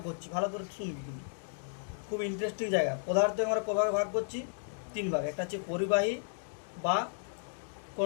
করছি, ভালো করে শুনবি কিন্তু খুব ইন্টারেস্টিং জায়গা। পদার্থকে আমরা কভাবে ভাগ করছি 3 ভাগ, একটা হচ্ছে পরিবাহী বা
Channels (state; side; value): silent; right; digital silence